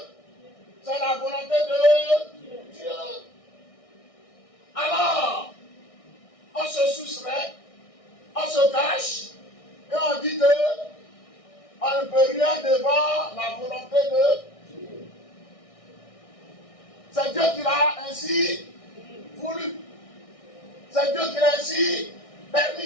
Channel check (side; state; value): right; late; 1.6 ms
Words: Dieu. Alors, on se soustrait, on se cache, et on dit que on ne peut rien devant la volonté de Dieu. C'est Dieu qui l'a ainsi voulu. C'est Dieu qui l'a ainsi